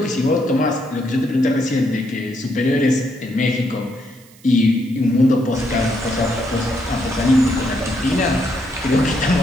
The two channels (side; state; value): right; noise; hiss, 26 dB below the sound